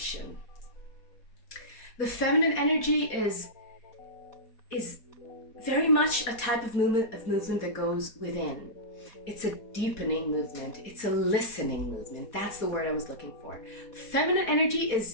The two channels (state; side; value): late; right; 4.2 ms